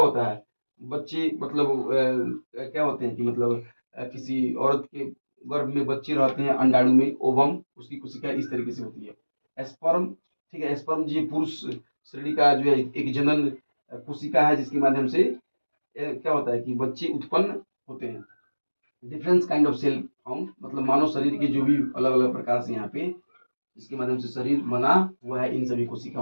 है, बच्चे मतलब क्या होते हैं कि मतलब किसी औरत के गर्भ में बच्चे रहते हैं अंडाणु में, ओवम, उसकी कोशिका इस तरीके से होती है। स्पर्म, ठीक है, स्पर्म जी पुरुष श्रेणी का जो है एक जनन कोशिका है, जिसके माध्यम से क्या होता है कि बच्चे उत्पन्न होते हैं। Difference kind of cell found, मतलब मानव शरीर के जो भी अलग अलग प्रकार से यहाँ पे इसके माध्यम से शरीर बना हुआ है, इन सभी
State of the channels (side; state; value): both; inverted; correlation -1.00